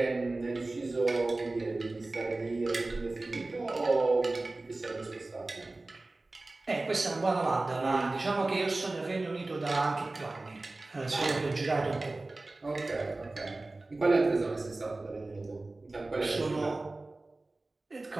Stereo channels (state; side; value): quieter; left; 3.1 dB